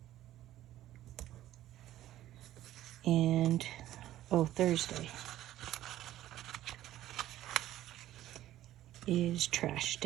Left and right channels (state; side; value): quieter; left; 13.7 dB